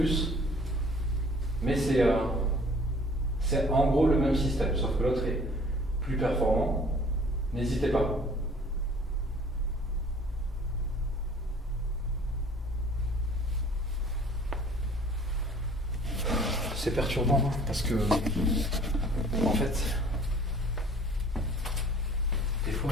mais c'est en gros le même système, sauf que l'autre est plus performant. N'hésitez pas. C'est perturbant parce que, en fait, des fois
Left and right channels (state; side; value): normal; both; correlation 0.52